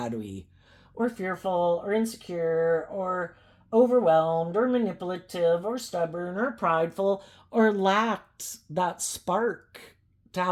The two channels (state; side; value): identical; both; correlation 1.00